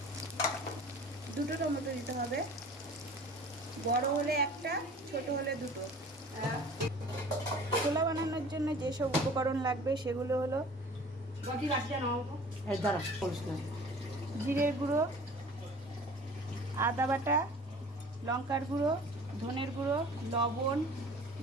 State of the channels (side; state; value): both; normal; correlation 0.45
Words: 2টো টমেটো দিতে হবে, বড় হলে একটা, ছোট হলে 2টো। ছোলা বানানোর জন্য যেসব উপকরণ লাগবে সেগুলো হলো জিরের গুঁড়ো, আদা বাটা, লঙ্কার গুঁড়ো, ধনের গুঁড়ো, লবণ,